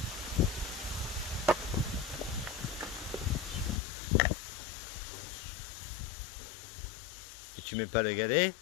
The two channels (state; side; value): drops out; right; at 3.8 s